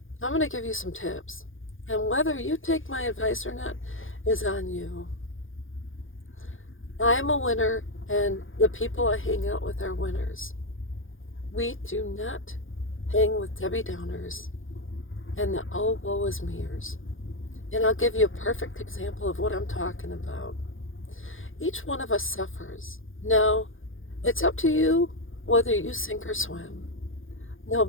I'm going to give you some tips. And whether you take my advice or not is on you. I am a winner, and the people I hang out with are winners. We do not hang with Debbie Downers and the oh woe is meers. And I'll give you a perfect example of what I'm talking about. Each one of us suffers. Now, it's up to you whether you sink or swim.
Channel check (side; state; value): right; late; 0.58 ms